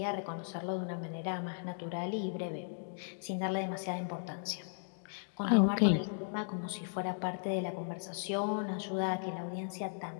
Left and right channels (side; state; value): right; silent; digital silence